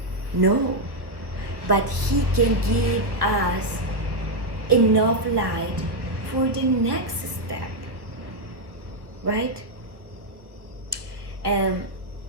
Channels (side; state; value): left; late; 1.2 ms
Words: no, but He can give us enough light for the next step, right?